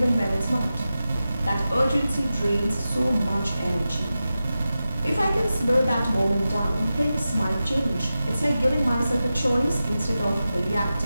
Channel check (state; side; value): inverted; both; correlation -0.93